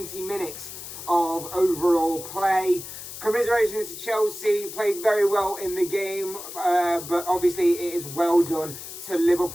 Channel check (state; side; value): noise; left; hiss, 11 dB below the sound